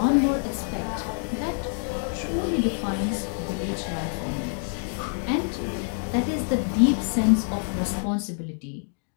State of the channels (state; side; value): silent; right; 60 dB below the other